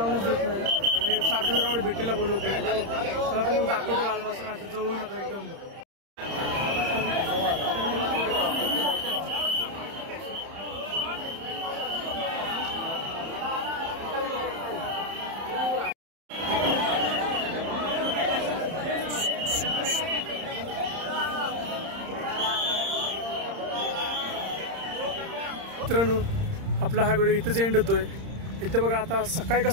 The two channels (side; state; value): left; late; 30 ms